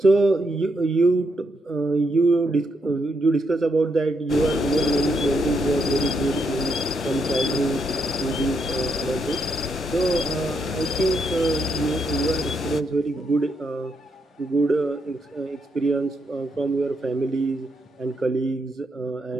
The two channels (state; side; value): normal; both; correlation 0.79